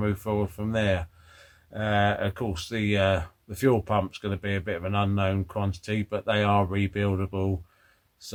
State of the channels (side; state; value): both; identical; correlation 1.00